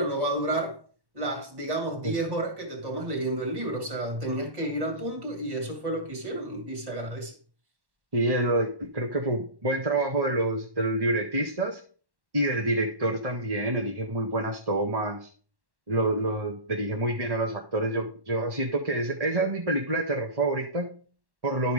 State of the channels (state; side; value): late; left; 1.1 ms